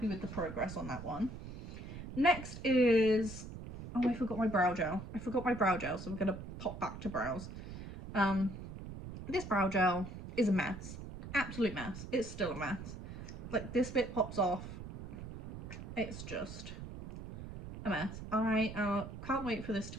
with the progress on that one. Next is, oh, I forgot my brow gel. So we're going to pop back to brows. This brow gel is a mess. Absolute mess. It's still a mess. Like, this bit pops off. It's just a mess. I can't wait for this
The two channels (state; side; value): noise; right; rumble, 10 dB below the sound